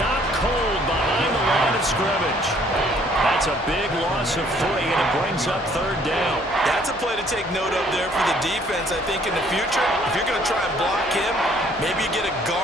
cold behind the line of scrimmage. That's a big loss of 3, and it brings up 3rd down. That's a play to take note of there for the defense. I think in the future, if you're going to try and block him, maybe you get a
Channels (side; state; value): both; normal; correlation 0.61